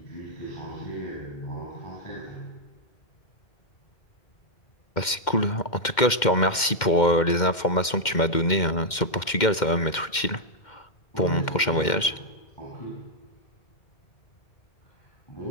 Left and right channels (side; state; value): right; late; 2.1 ms